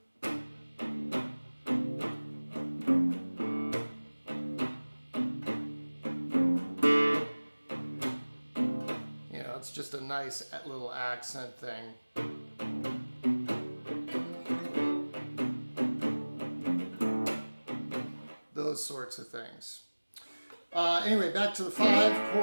It's just a nice little accent thing. Those sorts of things. Anyway, back to the 5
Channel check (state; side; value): inverted; both; correlation -1.00